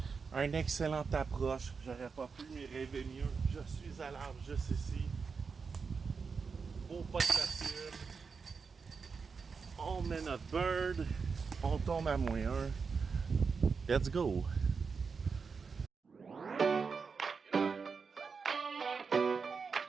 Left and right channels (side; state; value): left; quieter; 5.3 dB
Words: Un excellent approche. J'aurais pas pu m'y rêver mieux. Je suis à l'arbre juste ici. Beau pas de facile. On met notre bird. On tombe à -1. Let's go!